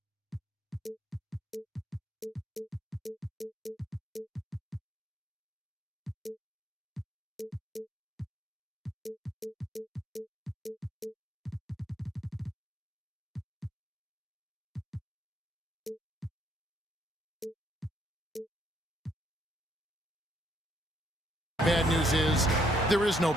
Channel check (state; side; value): normal; both; correlation 0.71